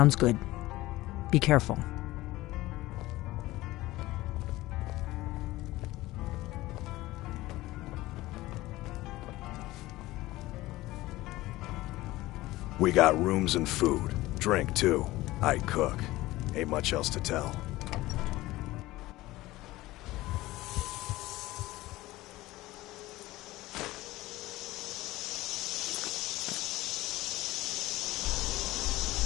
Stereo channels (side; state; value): right; quieter; 18.0 dB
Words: good. Be careful. We got rooms and food. Drink, too. I cook. Ain't much else to tell.